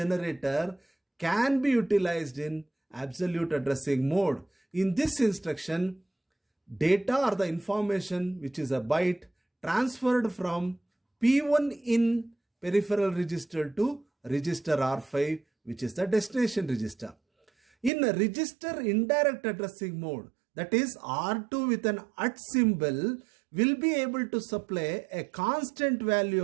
can be utilized in absolute addressing mode. In this instruction, data or the information which is a byte transferred from P1 in peripheral register to register R5, which is the destination register. In a register indirect addressing mode, that is R2 with an @ symbol will be able to supply a constant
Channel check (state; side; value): drops out; left; at 17.9 s